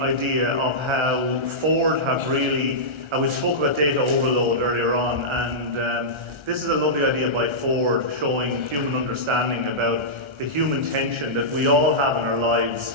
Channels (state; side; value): late; left; 1.3 ms